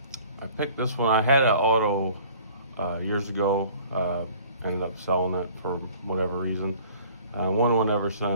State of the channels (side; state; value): both; inverted; correlation -0.50